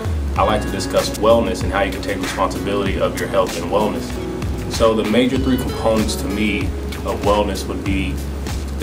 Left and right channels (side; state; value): both; identical; correlation 1.00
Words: I like to discuss wellness and how you can take responsibility of your health and wellness. So the major three components to me of wellness would be